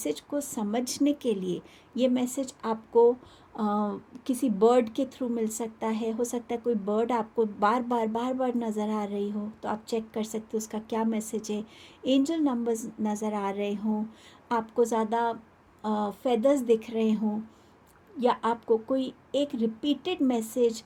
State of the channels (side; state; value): both; identical; correlation 1.00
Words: को समझने के लिए। ये मैसेज आपको किसी बर्ड के थ्रू मिल सकता है। हो सकता है कोई बर्ड आपको बार बार नज़र आ रही हो, तो आप चेक कर सकते हो उसका क्या मैसेज है। एंजल नंबर्स नज़र आ रहे हों, आपको ज़्यादा फेदर्स दिख रहे हों, या आपको कोई एक रिपीटेड मैसेज